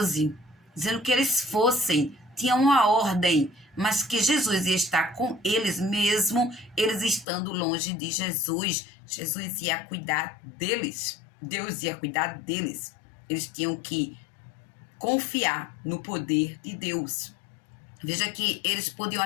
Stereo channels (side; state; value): right; drops out; at 7.2 s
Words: dizendo que eles fossem, tinham uma ordem, mas que Jesus ia estar com eles mesmo, eles estando longe de Jesus. Jesus ia cuidar deles, Deus ia cuidar deles. Eles tinham que confiar no poder de Deus. Veja que eles podiam